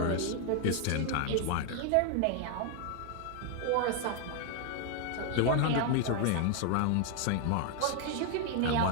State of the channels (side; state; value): both; different; correlation 0.00